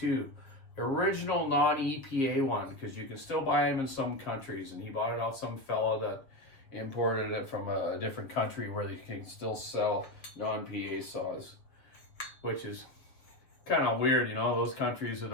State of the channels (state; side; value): late; right; 7.3 ms